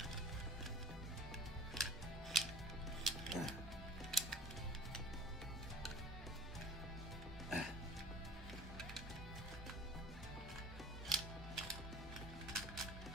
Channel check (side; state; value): both; normal; correlation 0.47